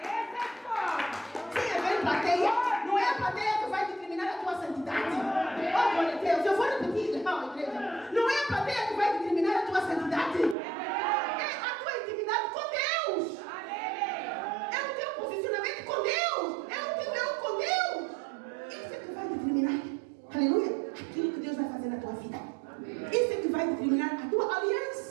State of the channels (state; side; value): drops out; left; at 10.6 s